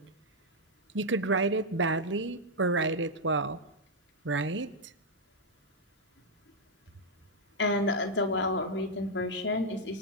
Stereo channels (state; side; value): normal; both; correlation -0.03